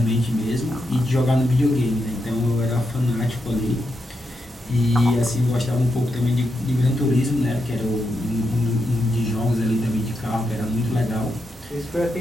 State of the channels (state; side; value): normal; both; correlation 0.85